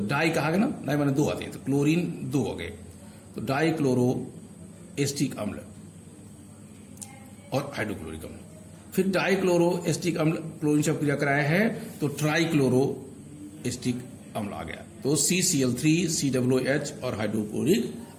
डाई कहा गया ना, डाई माने दो आते हैं, तो क्लोरीन दो हो गए, तो डाइक्लोरो एस्टिक अम्ल और हाइड्रोक्लोरिक अम्ल। फिर डाइक्लोरो एस्टिक अम्ल क्लोरीन से अभिक्रिया कराया है, तो ट्राइक्लोरो एस्टिक अम्ल आ गया। तो CCl3COOH और हाइड्रोक्लोरिक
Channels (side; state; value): both; identical; correlation 1.00